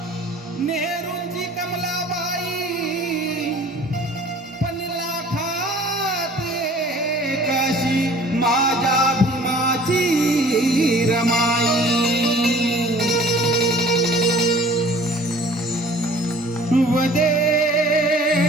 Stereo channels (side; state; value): both; normal; correlation 0.49